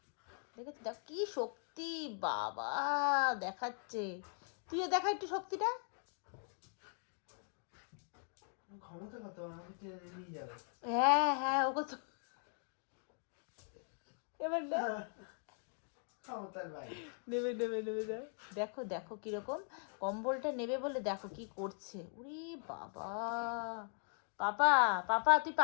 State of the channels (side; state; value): right; silent; 51 dB below the other